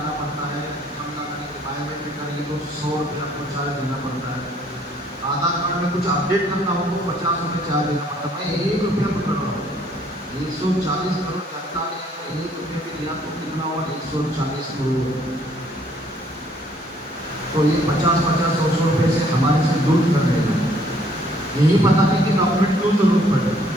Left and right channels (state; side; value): normal; both; correlation 0.63